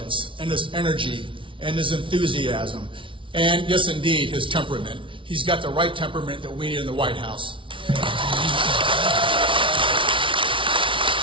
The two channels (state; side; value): late; left; 0.25 ms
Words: and his energy and his enthusiasm and, yes, indeed, his temperament. He's got the right temperament that we need in the White House.